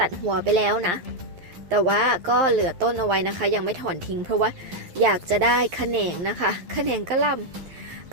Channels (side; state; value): left; late; 11 ms